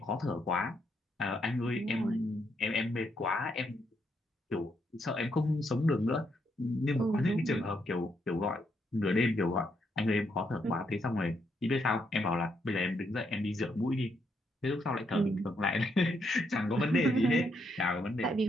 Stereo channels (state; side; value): normal; both; correlation 0.76